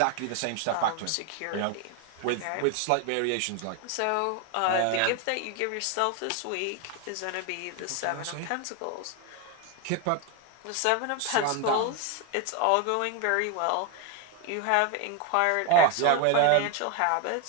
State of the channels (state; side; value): different; both; correlation 0.01